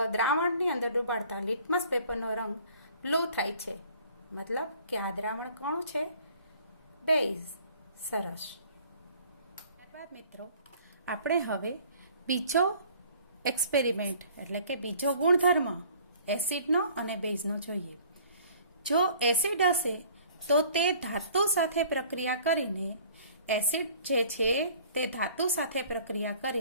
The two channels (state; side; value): inverted; both; correlation -0.53